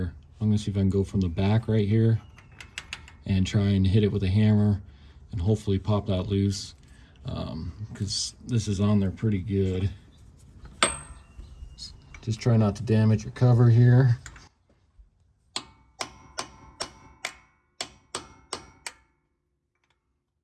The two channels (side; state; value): both; identical; correlation 1.00